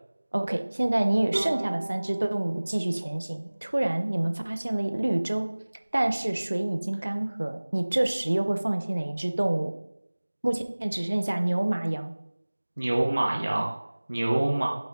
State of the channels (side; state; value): both; inverted; correlation -1.00